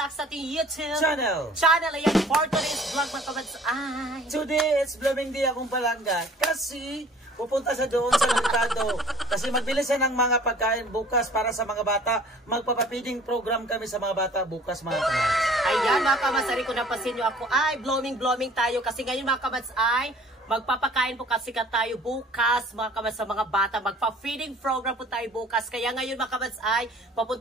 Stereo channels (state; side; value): normal; both; correlation 0.51